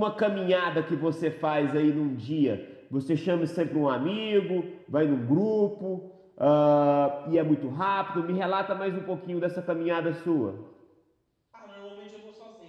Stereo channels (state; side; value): identical; both; correlation 1.00